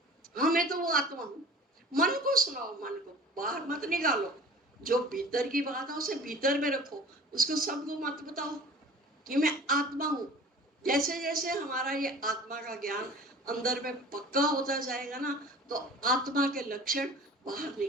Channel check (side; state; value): both; normal; correlation 0.43